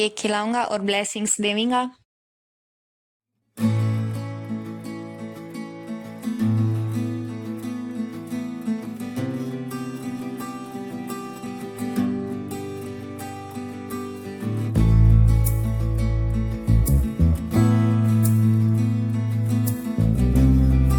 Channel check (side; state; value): both; identical; correlation 1.00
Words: खिलाऊंगा और ब्लेसिंग्स देवेंगा।